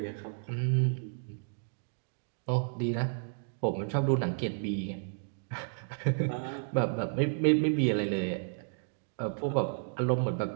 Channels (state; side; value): silent; left; digital silence